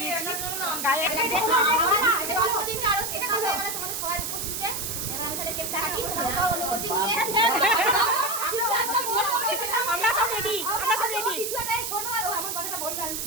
দিয়েছি গায়ে। আমরা সব রেডি, আমরা সব রেডি।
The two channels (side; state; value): right; noise; hiss, 3 dB below the sound